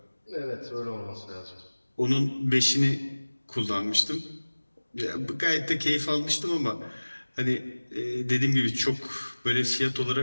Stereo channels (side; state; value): both; inverted; correlation -1.00